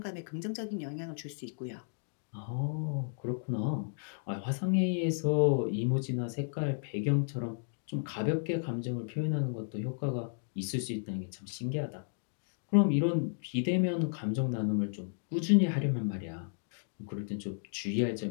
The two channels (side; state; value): right; silent; digital silence